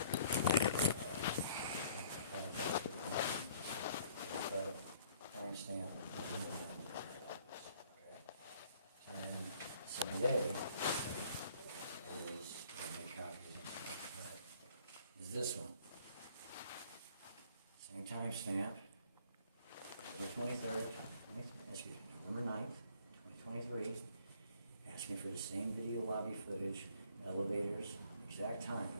Timestamp. Okay. Same day is this one. Same timestamp. November 23rd, November 9th, 2023. Asked me for the same video lobby footage, elevators, exact time,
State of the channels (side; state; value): both; inverted; correlation -0.58